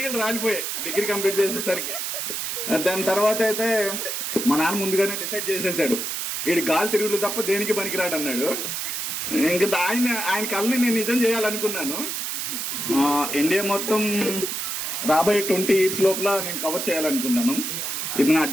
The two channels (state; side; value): noise; right; hiss, 3 dB below the sound